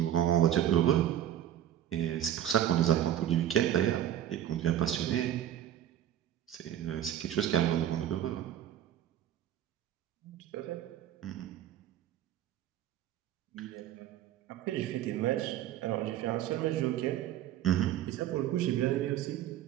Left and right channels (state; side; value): quieter; left; 11.3 dB